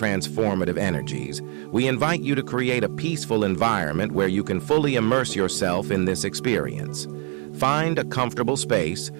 energies, we invite you to create a peaceful environment where you can fully immerse yourself in this experience. Find a comfortable space,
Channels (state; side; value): quieter; left; 39.8 dB